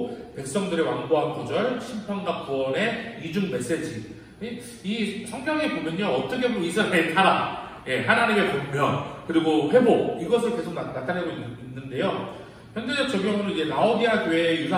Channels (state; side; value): identical; both; correlation 1.00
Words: 백성들의 완고한 거절, 심판과 구원의 이중 메시지. 이 성경에 보면요, 어떻게 보면 이스라엘의 타락, 하나님의 권면, 그리고 회복, 이것을 계속 나타내고 있는데요. 현대적 적용으로 이제 라오디아 교회의